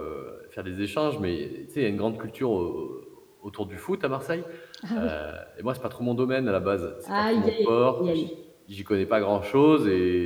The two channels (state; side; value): identical; both; correlation 1.00